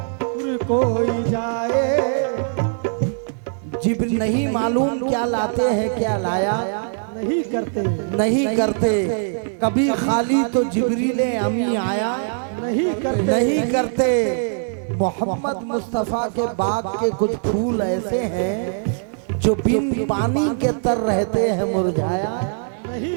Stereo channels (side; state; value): left; silent; digital silence